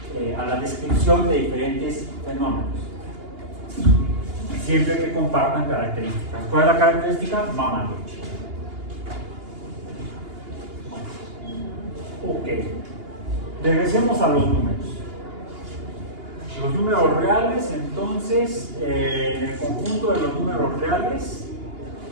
a la descripción de diferentes fenómenos, siempre que compartan características. ¿Cuál es la característica? Mamaluchi. Ok, regresemos a los números. Los números reales, entonces, en el conjunto de los números reales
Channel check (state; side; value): late; left; 2.8 ms